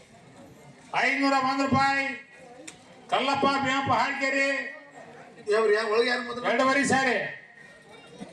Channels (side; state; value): both; identical; correlation 1.00